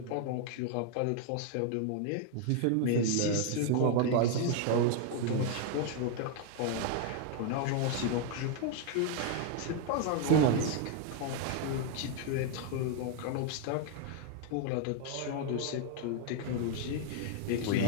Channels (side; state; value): both; different; correlation 0.00